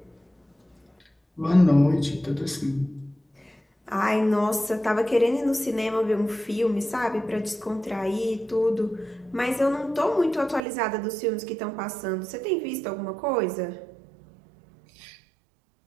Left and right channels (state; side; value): drops out; left; at 10.7 s